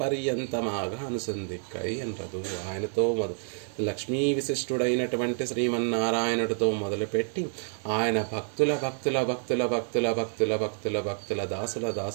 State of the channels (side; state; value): left; silent; 59 dB below the other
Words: పర్యంతమాగా అనుసంధిక్కై ఎన్రదు. ఆయనతో లక్ష్మీ విశిష్టుడైనటువంటి శ్రీమన్నారాయణుడితో మొదలుపెట్టి ఆయన భక్తుల భక్తుల భక్తుల భక్తుల భక్తుల భక్తుల భక్తుల దాసుల